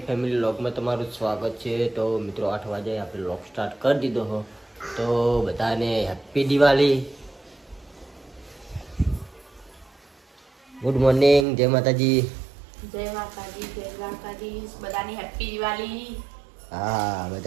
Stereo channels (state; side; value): drops out; left; at 11.5 s